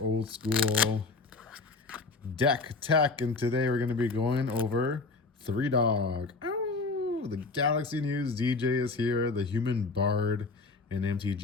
school deck tech, and today we're going to be going over Three Dog. Ow! The Galaxy News DJ is here, the human bard in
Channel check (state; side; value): quieter; right; 3.8 dB